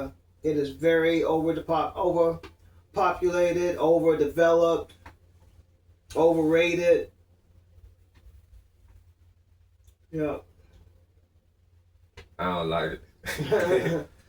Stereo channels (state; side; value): identical; both; correlation 1.00